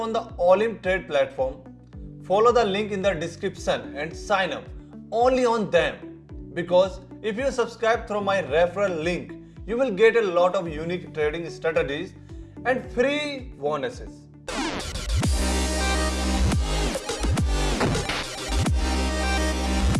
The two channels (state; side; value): identical; both; correlation 1.00